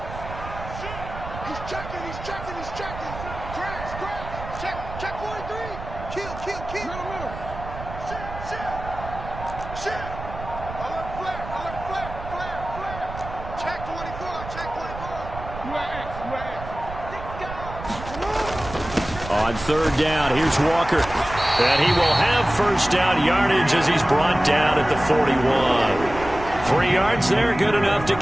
On 3rd down, here's Walker. And he will have 1st down yardage as he's brought down at the 41. 3 yards there, good enough to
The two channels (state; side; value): noise; right; rumble, 11 dB below the sound